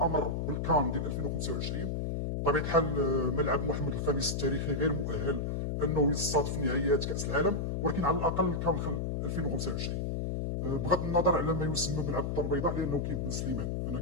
بالكان ديال 2025. بطبيعة الحال ملعب محمد الخامس التاريخي غير مؤهل أنه يستضيف نهائيات كأس العالم، ولكن على الأقل كان 2025 بغض النظر على ما يسمى ملعب الدار البيضاء، لأنه كاين بن سليمان. أنا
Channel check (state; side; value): noise; left; hum, 1 dB below the sound